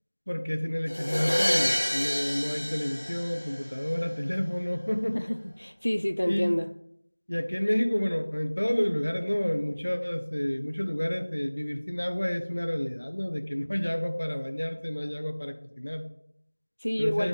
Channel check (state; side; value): inverted; both; correlation -1.00